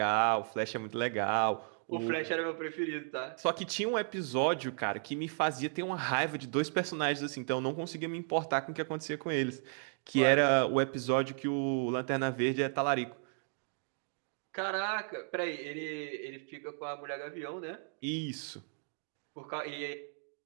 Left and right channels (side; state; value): left; silent; 55 dB below the other